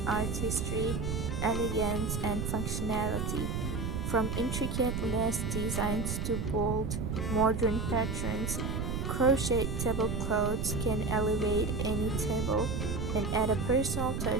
artistry, elegance and functionality. From intricate lace designs to bold modern patterns, crochet tablecloths can elevate any table and add a personal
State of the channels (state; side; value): noise; right; rumble, 2 dB below the sound